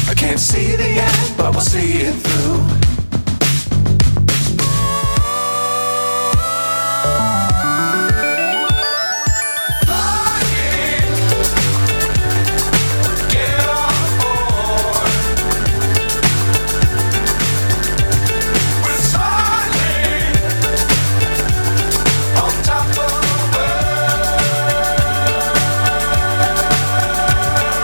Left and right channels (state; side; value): inverted; both; correlation -1.00